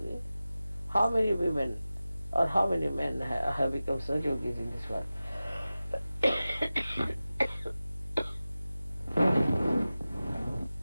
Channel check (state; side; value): inverted; both; correlation -0.96